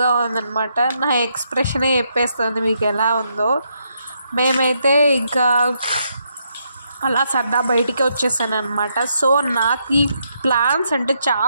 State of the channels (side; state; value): both; inverted; correlation -0.78